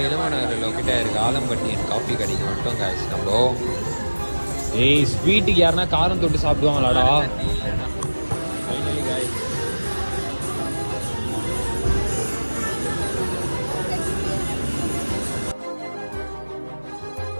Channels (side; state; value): both; inverted; correlation -1.00